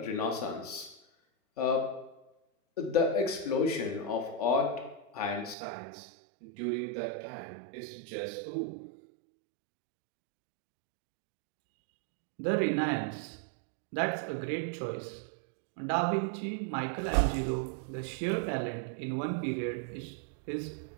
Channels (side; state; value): left; drops out; at 5.6 s